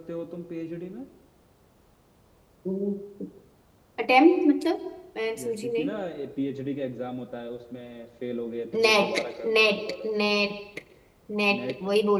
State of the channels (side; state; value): both; identical; correlation 1.00